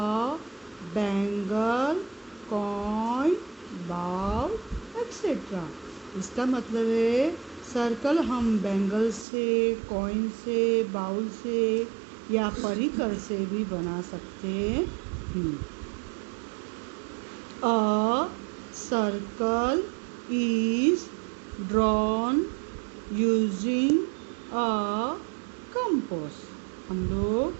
bangle, coin, bowl etcetera. इसका मतलब है सर्कल हम बैंगल से, कॉइन से, बाउल से या परिकर से भी बना सकते हैं। A circle is drawn using a compass. हम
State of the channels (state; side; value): drops out; left; at 9.2 s